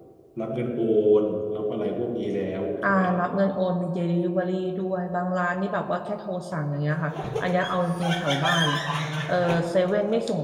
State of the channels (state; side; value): identical; both; correlation 1.00